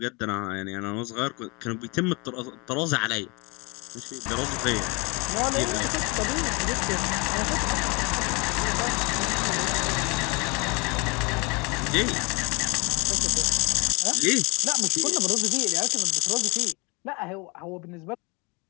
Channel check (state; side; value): quieter; right; 29.1 dB